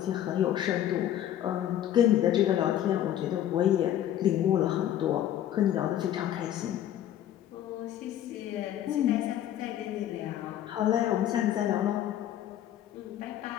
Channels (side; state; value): right; quieter; 11.5 dB